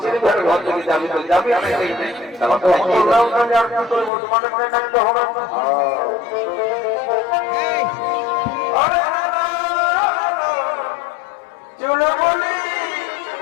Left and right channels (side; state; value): right; drops out; at 4.1 s